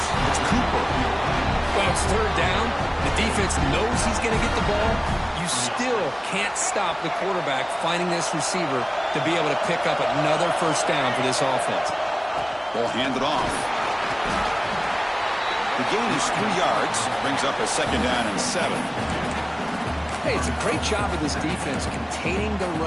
It's Cooper. Well, it's third down. The defense knows he's going to get the ball. You still can't stop the quarterback finding this receiver to be able to pick up another first down for this offense. Ball handed off. The gain is 3 yards. Brings up a second down and 7. Hey, it's a great job of this defense containing the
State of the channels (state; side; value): identical; both; correlation 1.00